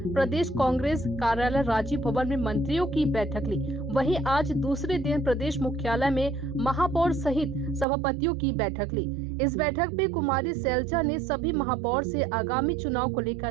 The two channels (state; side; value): drops out; left; at 7.9 s